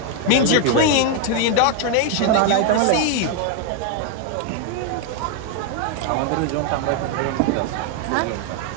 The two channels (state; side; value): different; both; correlation 0.01